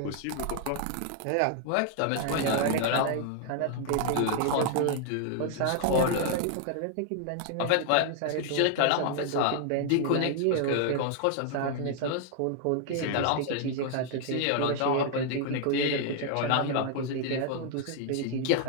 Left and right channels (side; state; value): both; different; correlation 0.00